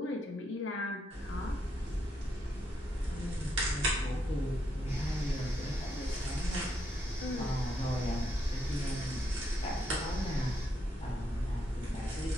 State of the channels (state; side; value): normal; both; correlation 0.78